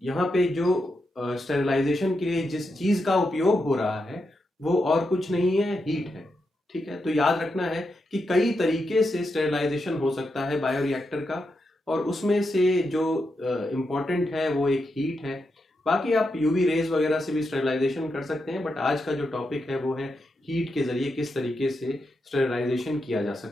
यहाँ पे जो स्टेरिलाइजेशन के लिए जिस चीज का उपयोग हो रहा है वो और कुछ नहीं है, हीट है। ठीक है, तो याद रखना है कि कई तरीके से स्टेरिलाइजेशन हो सकता है बायोरिएक्टर का, और उसमें से जो इम्पोर्टेंट है वो एक हीट है। बाकी आप यूवी रेज वगैरह से भी स्टेरिलाइजेशन कर सकते हैं, बट आज का जो टॉपिक है वो है हीट के जरिए किस तरीके से स्टेरिलाइजेशन किया जा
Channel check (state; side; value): normal; both; correlation 0.85